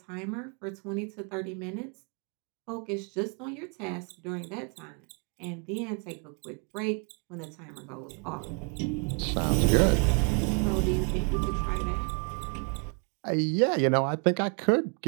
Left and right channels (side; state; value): left; quieter; 38.3 dB